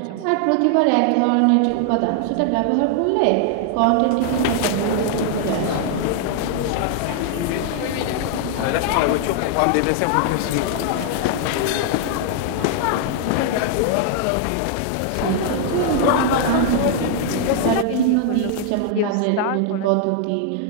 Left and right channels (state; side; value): different; both; correlation 0.00